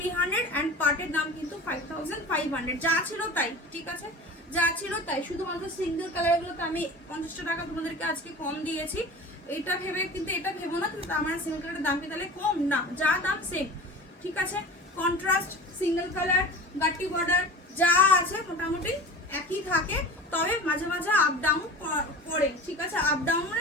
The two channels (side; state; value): both; normal; correlation 0.36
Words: অ্যান্ড পাটের দাম কিন্তু 5500, যা ছিল তাই, ঠিক আছে, যা ছিল তাই। শুধুমাত্র সিঙ্গেল কালারগুলোতে আমি 50 টাকা তোমাদেরকে আজকে কম দিয়েছি, এটা ভেবে কিন্তু এটা ভেবো না কিন্তু আমার সিঙ্গেল কালারের দাম কি তাহলে কম, না, যা দাম সেম, ঠিক আছে। কন্ট্রাস্ট সিঙ্গেল কালার গাটি বর্ডার যা আছে মোটামুটি একই থাকে, তবে মাঝে মাঝে আপ ডাউন করে, ঠিক আছে। আপ ডাউন